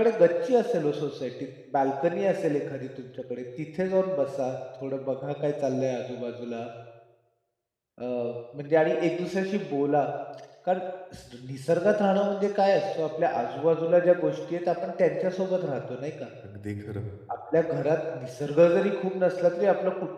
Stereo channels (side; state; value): both; identical; correlation 1.00